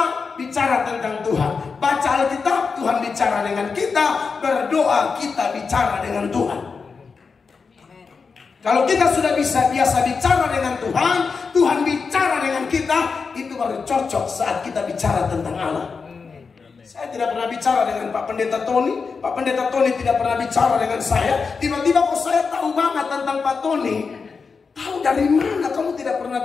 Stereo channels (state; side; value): quieter; right; 5.1 dB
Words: bicara tentang Tuhan, baca Alkitab Tuhan bicara dengan kita, berdoa kita bicara dengan Tuhan. Kalau kita sudah biasa bicara dengan Tuhan, Tuhan bicara dengan kita, itu baru cocok saat kita bicara tentang Allah. Saya tidak pernah bicara dengan Pak Pendeta Tony, Pak Pendeta Tony tidak pernah bicara dengan saya. Tiba-tiba kok saya tahu banget tentang Pak Tony. Tahu dari mana? Kamu tidak pernah